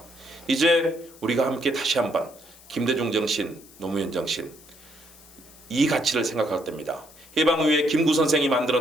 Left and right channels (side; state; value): left; noise; hiss, 22 dB below the sound